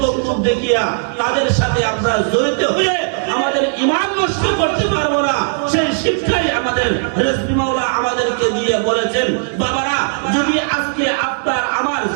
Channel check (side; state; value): left; silent; 67 dB below the other